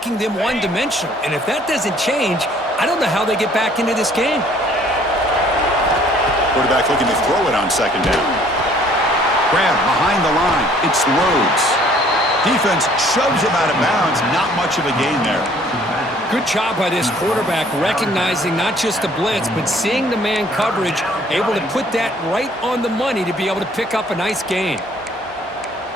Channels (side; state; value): both; normal; correlation 0.58